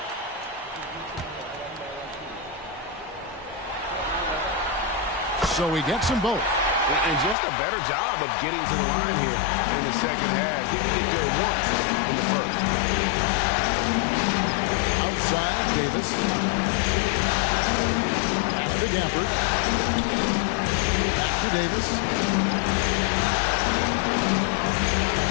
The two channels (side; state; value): right; drops out; at 7.4 s